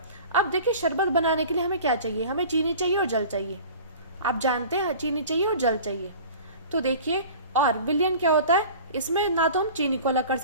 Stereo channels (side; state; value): both; inverted; correlation -0.42